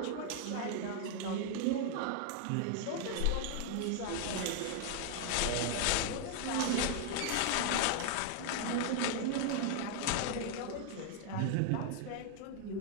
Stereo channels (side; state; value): both; different; correlation 0.00